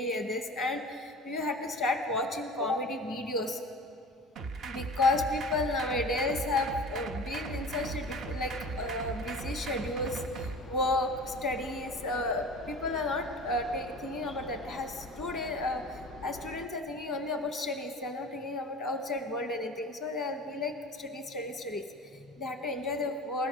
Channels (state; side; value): normal; both; correlation 0.38